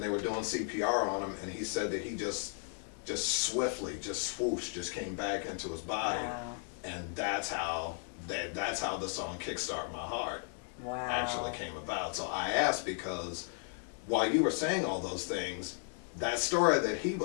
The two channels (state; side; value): silent; right; 54 dB below the other